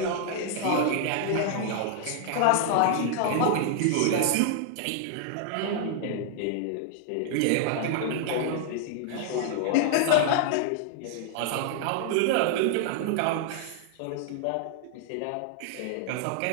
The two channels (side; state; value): both; different; correlation -0.01